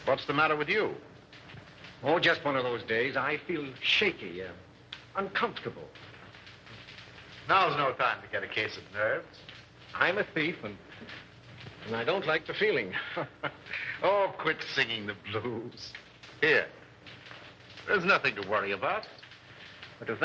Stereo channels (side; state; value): both; identical; correlation 1.00